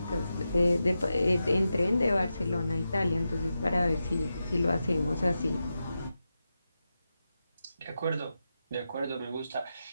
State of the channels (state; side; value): inverted; both; correlation -0.90